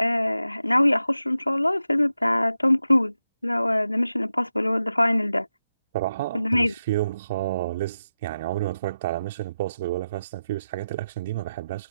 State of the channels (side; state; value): both; inverted; correlation -0.89